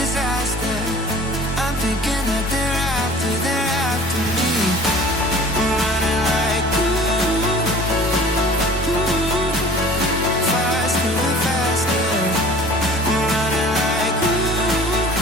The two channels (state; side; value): normal; both; correlation 0.46